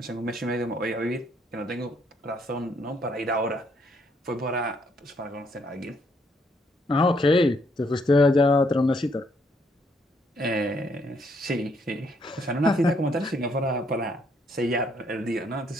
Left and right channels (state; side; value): normal; both; correlation 0.71